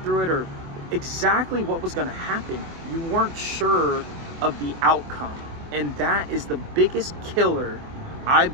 through it, or exactly what was gonna happen. You weren't sure of the outcome. And that is the biggest killer, I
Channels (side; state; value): left; late; 24 ms